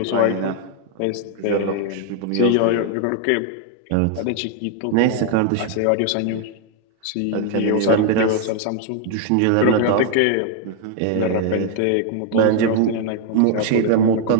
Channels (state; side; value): different; both; correlation 0.00